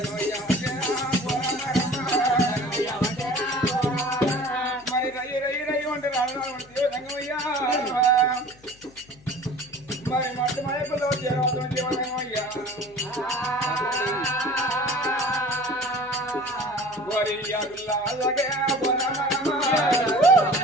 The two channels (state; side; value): noise; left; hum, 26 dB below the sound